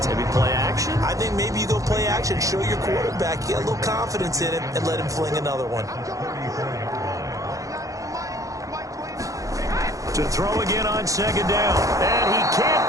Maybe play action? I think maybe you go play action, show your quarterback, you get a little confidence in him, and let him fling another one. To throw again on second down. And he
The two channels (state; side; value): late; left; 0.16 ms